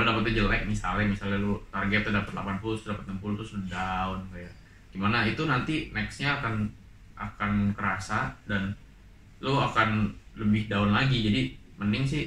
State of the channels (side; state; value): both; identical; correlation 1.00